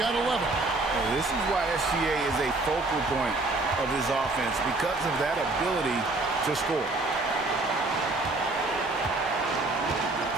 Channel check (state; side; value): quieter; left; 3.1 dB